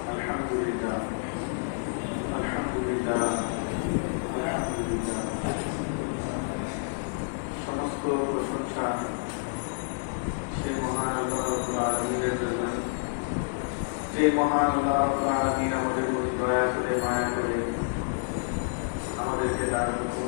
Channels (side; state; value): right; silent; 59 dB below the other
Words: الحمد لله الحمد لله الحمد لله. সমস্ত প্রশংসা সেই মহান আল্লাহ রাব্বুল আলামিনের জন্য, যে মহান আল্লাহ রাব্বুল আলামিন আমাদের প্রতি দয়া করে, মায়া করে আমাদেরকে তার হুকুম